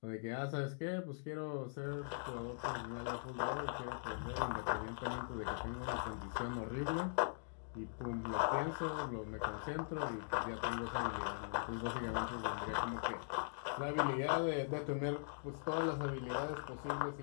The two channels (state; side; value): silent; right; digital silence